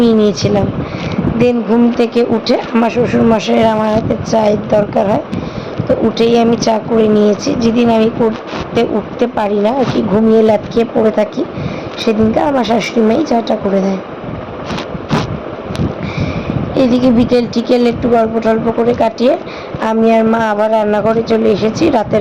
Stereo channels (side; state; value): both; identical; correlation 1.00